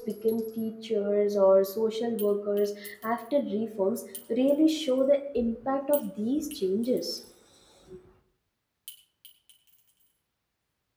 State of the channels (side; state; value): both; identical; correlation 1.00